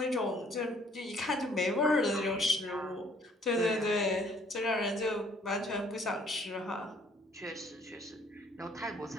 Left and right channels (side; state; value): both; normal; correlation 0.60